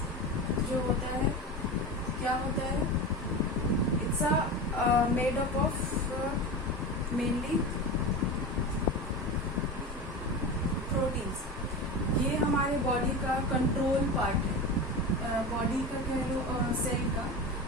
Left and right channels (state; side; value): normal; both; correlation 0.25